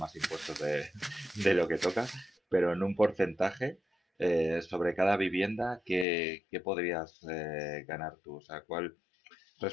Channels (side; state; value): right; drops out; at 6.1 s